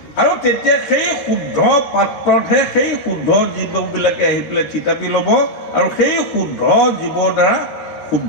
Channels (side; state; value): right; late; 13 ms